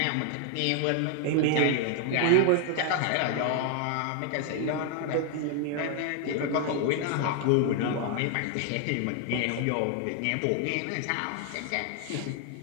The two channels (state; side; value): different; both; correlation 0.00